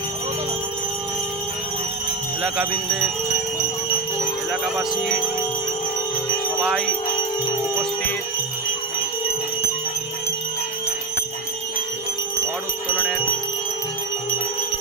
এলাকাবাসী সবাই উপস্থিত। ঘট উত্তোলনের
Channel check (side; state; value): left; quieter; 3.6 dB